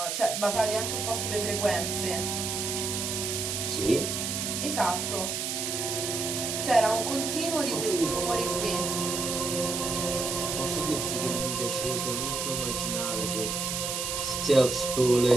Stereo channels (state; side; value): noise; right; hiss, 2 dB below the sound